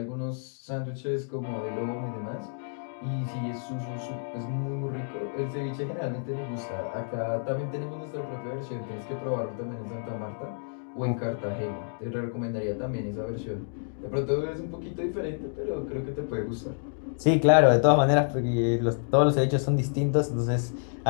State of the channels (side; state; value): right; silent; digital silence